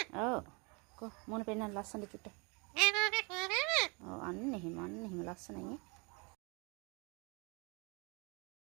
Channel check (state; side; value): quieter; left; 31.0 dB